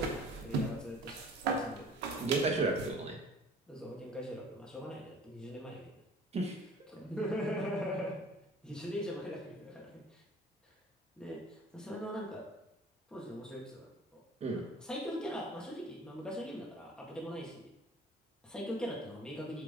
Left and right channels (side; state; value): both; normal; correlation 0.48